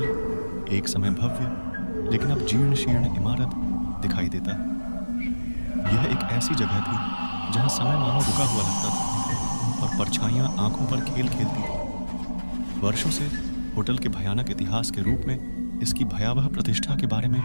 एक समय भव्य लेकिन अब जीर्ण शीर्ण इमारत दिखाई देता है। यह एक ऐसी जगह थी जहां समय मानो रुका हुआ लगता था और परछाइयां आंखों पर खेल खेलती थी। वर्षों से होटल के भयानक इतिहास के रूप में इसकी भयावह प्रतिष्ठा के बारे में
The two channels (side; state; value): both; inverted; correlation -1.00